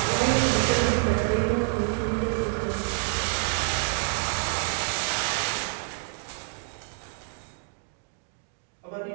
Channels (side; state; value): left; silent; 60 dB below the other